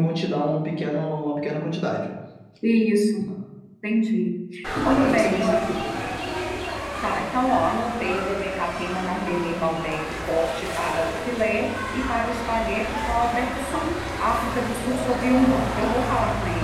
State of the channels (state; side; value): identical; both; correlation 1.00